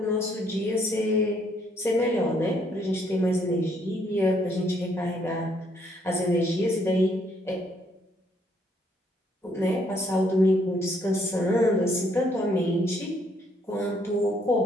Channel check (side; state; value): both; normal; correlation 0.69